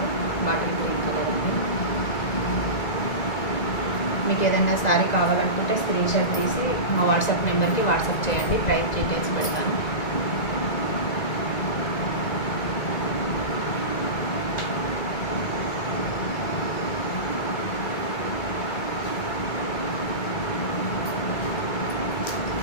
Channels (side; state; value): right; late; 1.9 ms